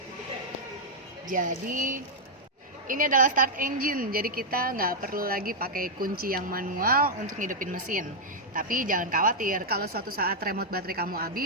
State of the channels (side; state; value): both; normal; correlation -0.03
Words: Jadi ini adalah start engine. Jadi kita nggak perlu lagi pakai kunci yang manual untuk ngidupin mesin. Tapi jangan khawatir, kalau suatu saat remote baterai kamu